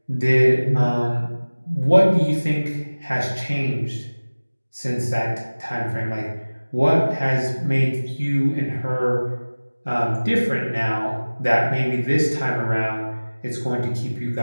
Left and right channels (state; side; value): inverted; both; correlation -1.00